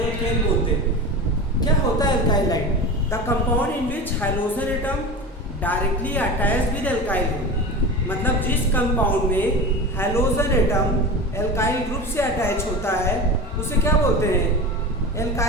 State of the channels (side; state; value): both; normal; correlation 0.29